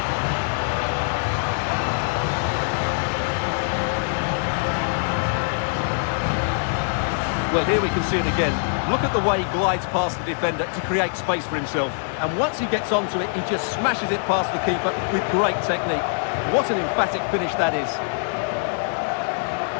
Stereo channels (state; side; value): silent; right; digital silence